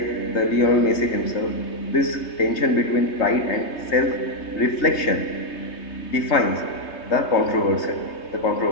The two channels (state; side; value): late; right; 3.2 ms